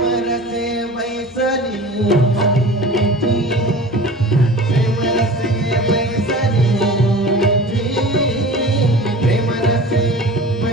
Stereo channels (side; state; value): left; noise; hum, 29 dB below the sound